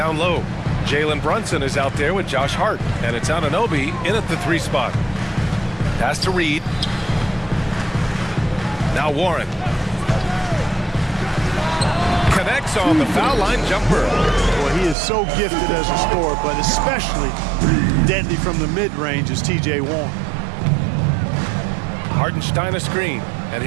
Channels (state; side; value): drops out; left; at 15.0 s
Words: low. Jalen Brunson is out there with Josh Hart. And it's Anunoby in at the 3 spot. Pass to Reed. Now Warren. Connects on the foul line jumper. Well, he is so gifted as a scorer, but especially deadly from the mid-range is T.J. Warren. Hartenstein a screen. And